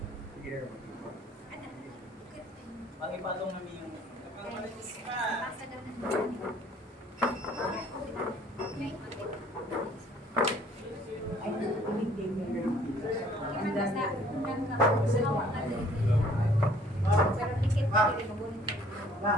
namin yung nagkakalitis ka. Pero tiket pa rin magunin ko.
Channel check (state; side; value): normal; both; correlation 0.57